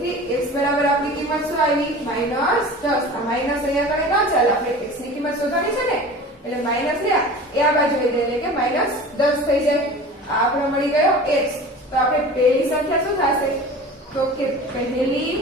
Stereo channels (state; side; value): normal; both; correlation 0.38